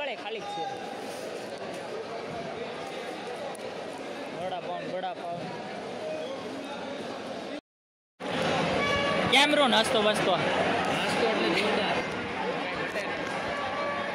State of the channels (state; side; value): identical; both; correlation 1.00